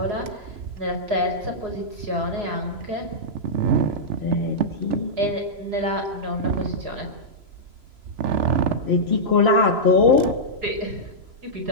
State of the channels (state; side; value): late; left; 3.0 ms